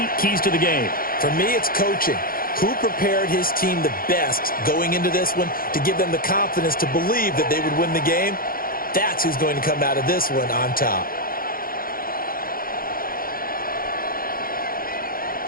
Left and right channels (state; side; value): late; right; 0.42 ms